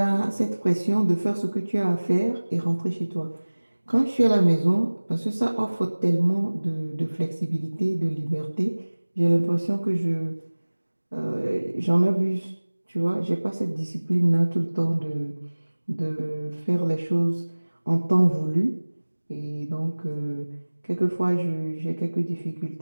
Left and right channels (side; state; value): both; inverted; correlation -1.00